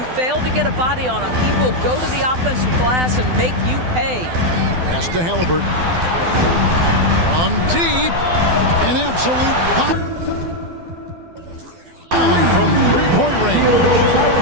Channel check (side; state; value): left; late; 12 ms